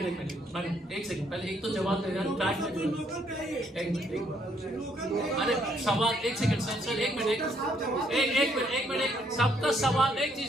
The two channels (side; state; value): both; normal; correlation 0.69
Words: एक सेकंड, पहले एक तो जवाब दे रहा, एक मिनट, अरे सवाल, एक सेकंड सर, एक मिनट, सबका सवाल एक